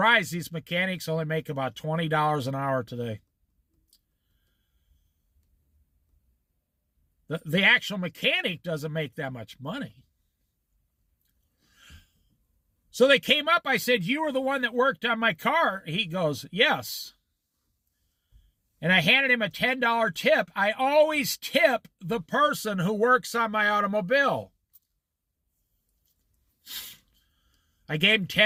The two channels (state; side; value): identical; both; correlation 1.00